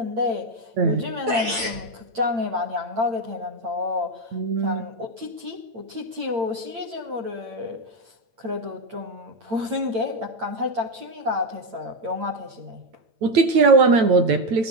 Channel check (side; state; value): left; late; 8.9 ms